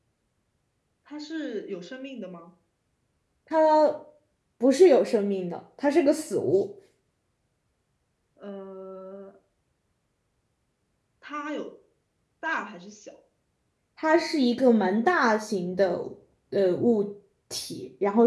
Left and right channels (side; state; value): both; identical; correlation 1.00